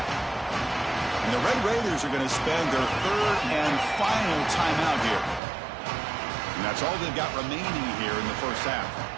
And the Red Raiders are going to spend their 3rd and final timeout here. And that's all they've got remaining here in the 1st half.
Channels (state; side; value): drops out; left; at 5.4 s